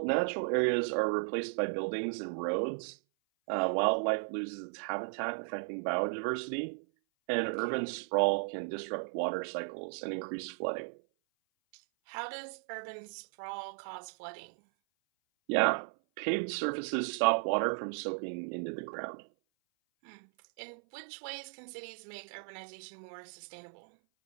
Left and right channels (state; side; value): silent; left; 54 dB below the other